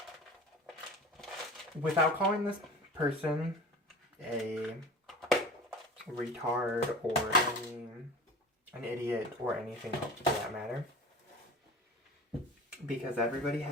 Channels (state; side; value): normal; both; correlation 0.37